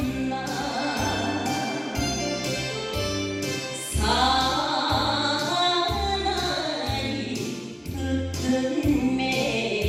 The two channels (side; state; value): both; identical; correlation 1.00